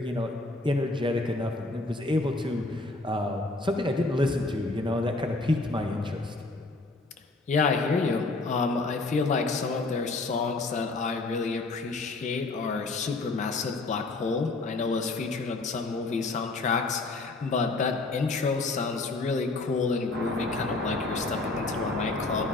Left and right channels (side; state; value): right; quieter; 3.2 dB